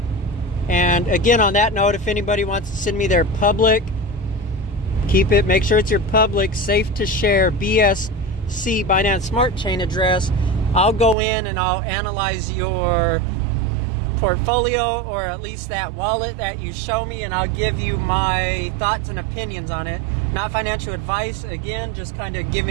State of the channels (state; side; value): drops out; left; at 11.2 s